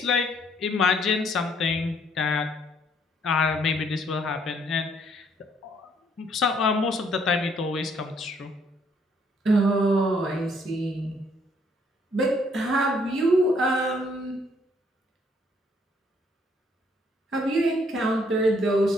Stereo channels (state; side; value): normal; both; correlation 0.67